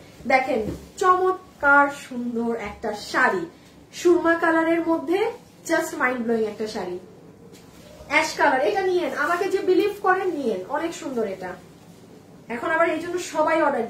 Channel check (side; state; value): both; identical; correlation 1.00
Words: দেখেন চমৎকার সুন্দর একটা শাড়ি, সুরমা কালারের মধ্যে জাস্ট মাইন্ড ব্লোয়িং একটা শাড়ি, অ্যাশ কালার। এটা নিয়েন, আমাকে যে বিলিভ করেন নিয়েন, অনেক সুন্দর এটা। এখন আবার এই জন্য সবাই অর্ডার